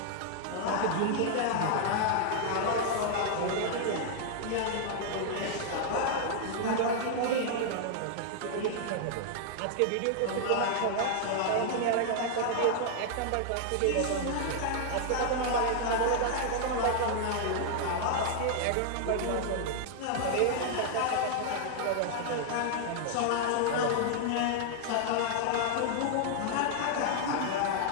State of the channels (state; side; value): different; both; correlation -0.01